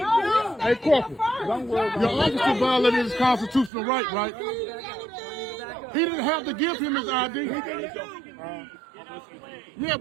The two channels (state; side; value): drops out; left; at 3.7 s